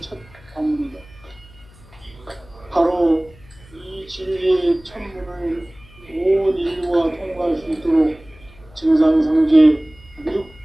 첫 관문이다. 바로 이 진리의 천문을 온 인류가 통과할 수 있도록 증상상제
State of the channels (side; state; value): left; noise; hum, 25 dB below the sound